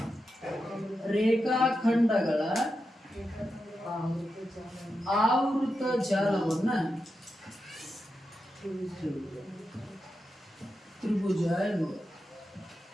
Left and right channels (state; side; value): normal; both; correlation 0.88